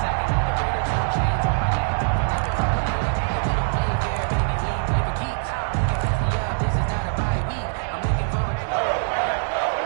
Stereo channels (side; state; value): left; silent; digital silence